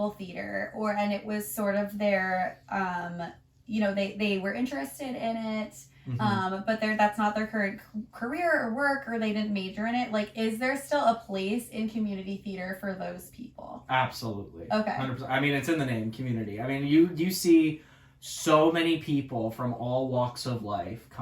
theater, and it was sort of their, you know, they were interested in it, but that's not their current career or work, or they didn't major in it. Like, is there still a place in community theater for those people? Absolutely. Okay. 100%. I mean, it's in the name, community. I mean, you see so many people from all walks of life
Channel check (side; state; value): both; identical; correlation 1.00